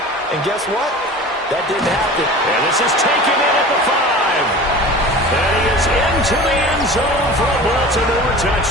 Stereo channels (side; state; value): both; normal; correlation 0.38